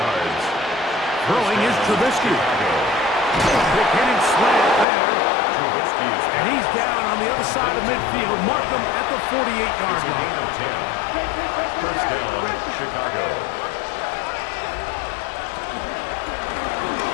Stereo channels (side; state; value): right; drops out; at 4.9 s